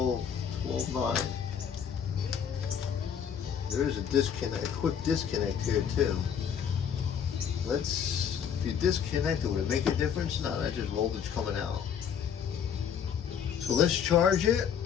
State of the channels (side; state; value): right; quieter; 7.9 dB